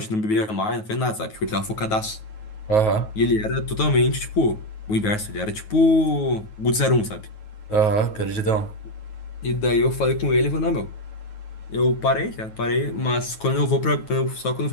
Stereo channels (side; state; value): right; late; 9.3 ms